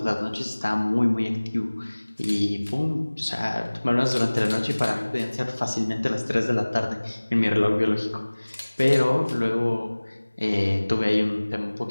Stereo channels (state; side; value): inverted; both; correlation -1.00